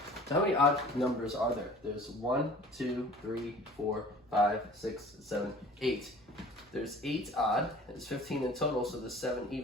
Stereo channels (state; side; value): normal; both; correlation 0.46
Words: So how many odd numbers are there? There's 1, 2, 3, 4, 5, 6, 7, 8. There's 8 odd, there's 15 in total, so there's 7